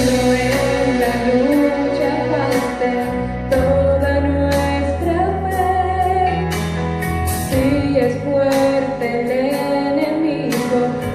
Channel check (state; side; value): identical; both; correlation 1.00